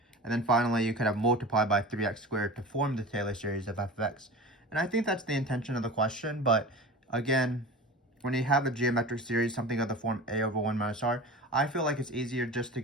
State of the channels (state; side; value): normal; both; correlation 0.34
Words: and then finally you could have multiplied by 3x squared to form the Taylor series of f of x. And I think that's the intention of the question, but again, when you have a geometric series, something of the form a over 1 minus r, I feel like it's easier just to